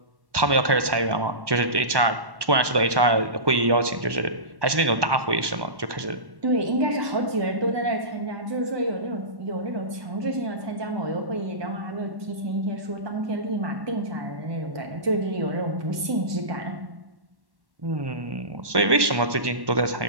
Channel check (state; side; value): late; left; 1.2 ms